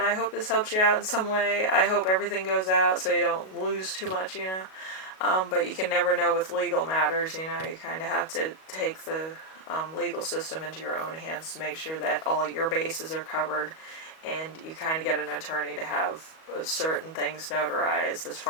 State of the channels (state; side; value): late; right; 37 ms